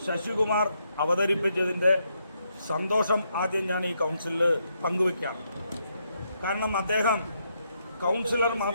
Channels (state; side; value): inverted; both; correlation -0.78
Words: ശശികുമാർ അവതരിപ്പിച്ചതിൻ്റെ സന്തോഷം ആദ്യം ഞാൻ ഈ കൗൺസിലിൽ പങ്കുവയ്ക്കാം. കാരണം അദ്ദേഹം കൗൺസിലർ